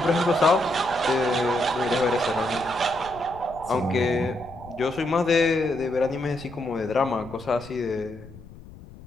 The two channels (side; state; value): left; noise; rumble, 19 dB below the sound